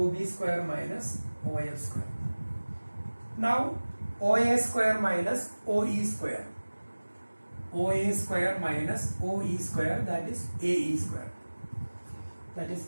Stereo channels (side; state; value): both; inverted; correlation -1.00